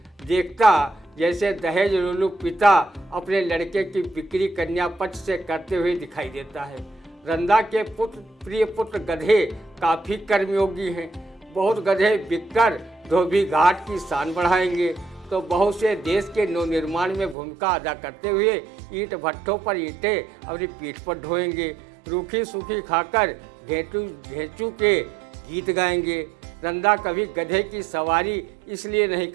देखता जैसे दहेज लुलू पिता अपने लड़के की बिक्री कन्या पक्ष से करते हुए दिखाई देता है। रंदा के प्रिय पुत्र गधे काफ़ी कर्मयोगी हैं। बहुत गधे बिककर धोबी घाट की शान बढ़ाएंगे तो बहुत से देश के नवनिर्माण में भूमिका अदा करते हुए ईंट भट्ठों पर ईंटें अपनी पीठ पर ढोएंगे। रूखी सूखी खाकर घेचू के गीत गाएंगे। रंदा कभी गधे की सवारी इसलिए नहीं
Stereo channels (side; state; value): left; drops out; at 17.4 s